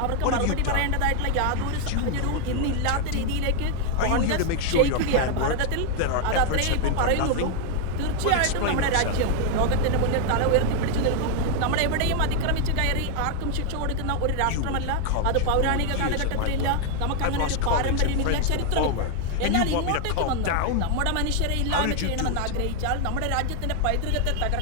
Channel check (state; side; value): different; both; correlation 0.00